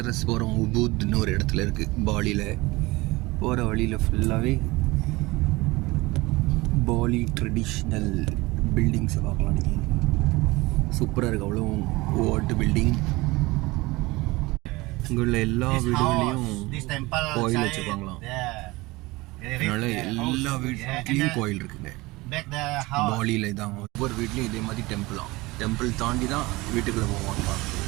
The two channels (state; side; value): quieter; left; 21.7 dB